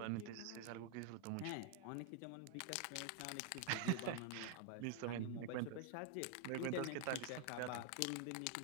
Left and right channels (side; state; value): both; different; correlation 0.00